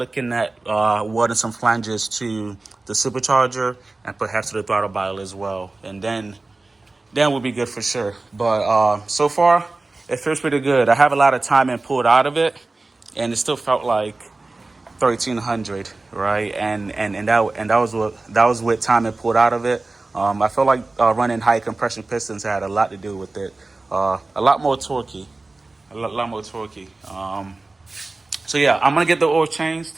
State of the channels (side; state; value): left; quieter; 3.3 dB